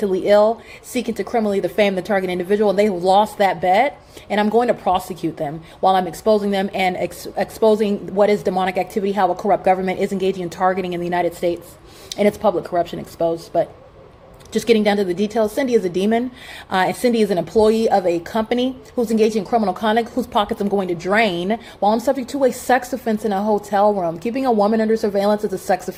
ill, seeking to criminally defame the target individual, and they lost that bet. And I'm going to prosecute them while I'm exposing them and exposing what is demonic activity, how a corrupt government is engaging in targeting in the United States, and its public corruption exposed. But just getting down to the details, Cindy is a demon. And Cindy is an employee of a company who's engaging in criminal conduct, whose pockets I'm going to drain while I'm subject to a sex offense in a hotel room. Keeping a woman under surveillance is a sex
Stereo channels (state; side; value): identical; both; correlation 1.00